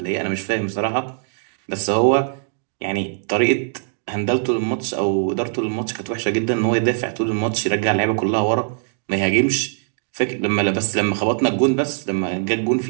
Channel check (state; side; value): silent; left; digital silence